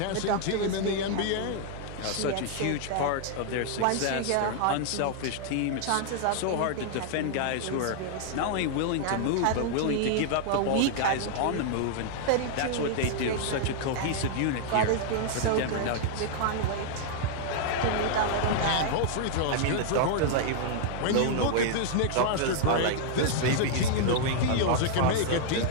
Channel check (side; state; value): both; different; correlation -0.01